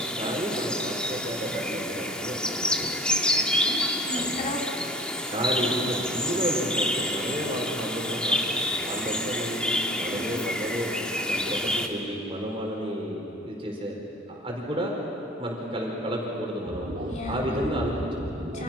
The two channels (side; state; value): both; normal; correlation 0.44